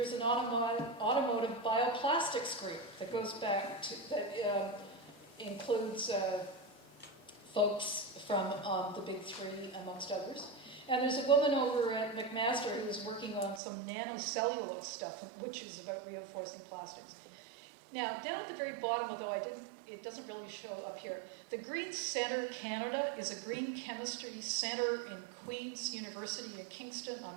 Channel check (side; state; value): left; drops out; at 13.6 s